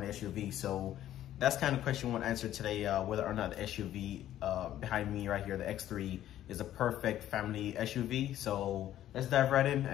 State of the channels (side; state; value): right; quieter; 12.4 dB